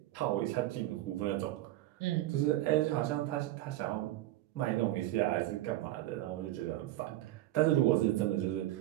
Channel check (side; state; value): left; quieter; 15.5 dB